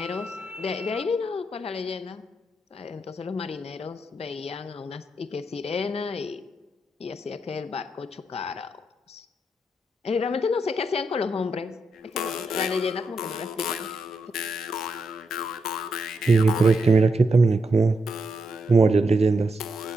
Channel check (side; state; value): both; normal; correlation 0.82